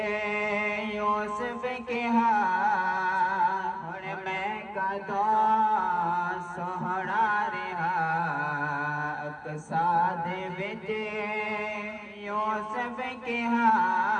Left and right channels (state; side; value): identical; both; correlation 1.00